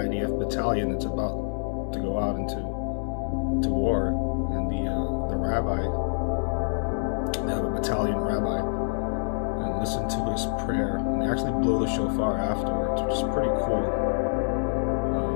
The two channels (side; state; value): right; silent; 60 dB below the other